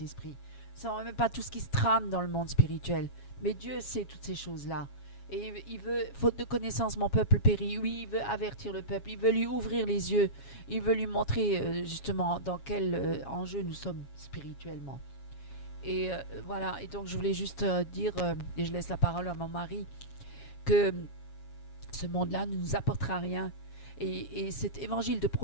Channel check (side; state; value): right; late; 7.3 ms